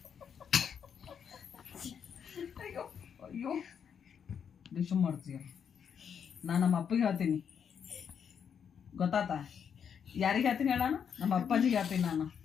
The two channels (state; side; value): quieter; right; 7.5 dB